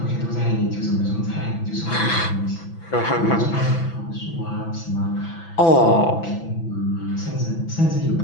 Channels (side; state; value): right; late; 6.0 ms